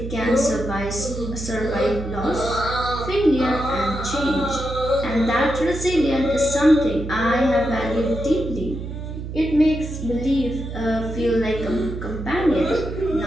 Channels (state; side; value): noise; right; hum, 7 dB below the sound